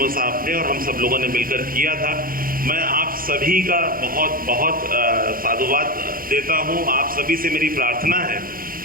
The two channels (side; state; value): left; late; 0.42 ms